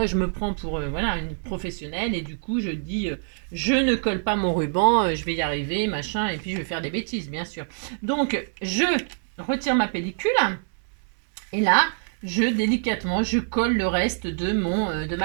je me prends pour voilà, une professionnelle et du coup, je dis, je ne colle pas mon ruban, je vais y arriver, machin, et puis je vais faire des bêtises, bien sûr. Donc, je retire ma pellicule et là... délicatement, je colle le reste de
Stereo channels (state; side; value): silent; left; digital silence